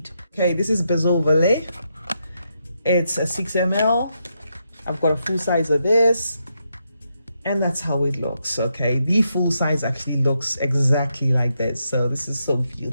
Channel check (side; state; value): both; inverted; correlation -0.81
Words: Okay, this is Bezo Vallée. It's a 6 ml. I've got a full size of this, and that's how it looks. Okay, the full size actually looks exactly like that. So this is so